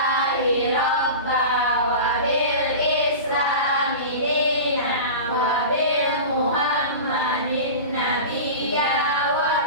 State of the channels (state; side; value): inverted; both; correlation -0.31